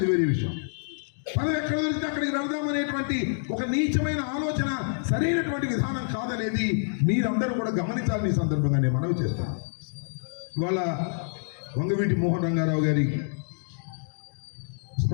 వేరే విషయం. పదవి ఎక్కడ దొరికితే అక్కడికి వెళదామనేటువంటి ఒక నీచమైన ఆలోచన సరైనటువంటి విధానం కాదనేది మీరందరూ కూడా గమనించాలని ఈ సందర్భంగా నేను మనవి చేస్తాను. ఇవాళ వంగవీటి మోహన్ రంగారావు గారి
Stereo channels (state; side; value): silent; right; digital silence